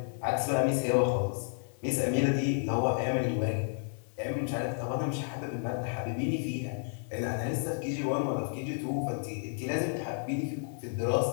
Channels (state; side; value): silent; right; digital silence